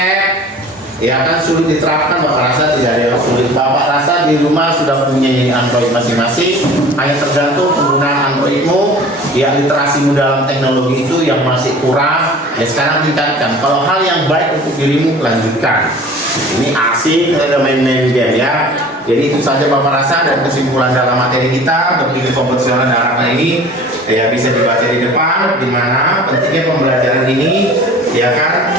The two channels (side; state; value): both; normal; correlation 0.44